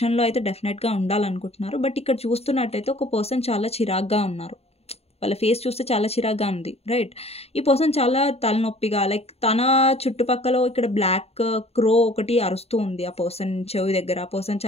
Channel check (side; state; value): right; late; 0.30 ms